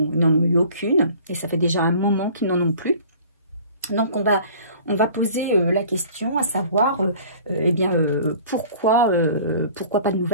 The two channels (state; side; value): inverted; both; correlation -0.47